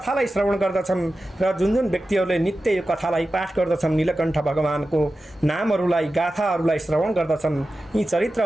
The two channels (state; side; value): normal; both; correlation 0.93